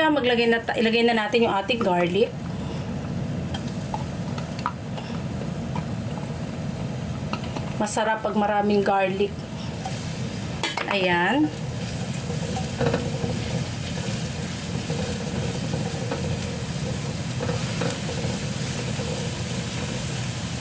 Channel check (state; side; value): identical; both; correlation 1.00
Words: ilagay na natin yung ating garlic. Masarap pag maraming garlic. Ayan.